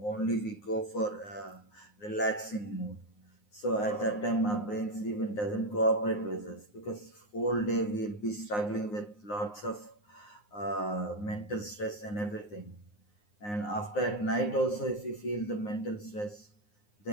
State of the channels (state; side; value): late; right; 9.6 ms